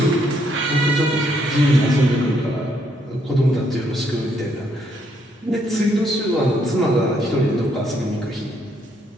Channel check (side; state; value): both; normal; correlation 0.72